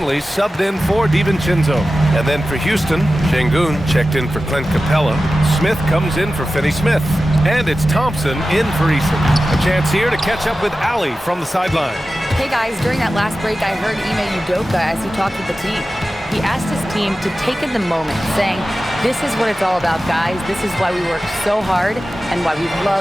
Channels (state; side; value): normal; both; correlation 0.94